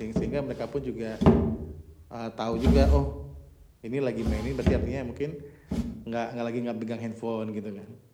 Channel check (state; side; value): identical; both; correlation 1.00